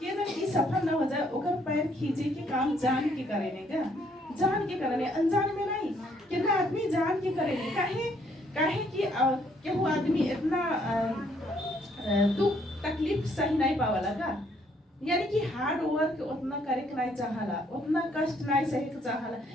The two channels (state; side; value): normal; both; correlation 0.68